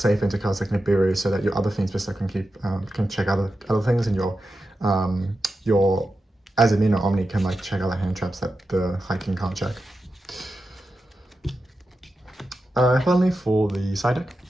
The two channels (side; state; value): both; normal; correlation 0.90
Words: into cards like Nibiru, so that your other Fiendsmith can check other things, and your Azamina Omni can like check other hand traps that the High King can't check. Finally, for the side deck,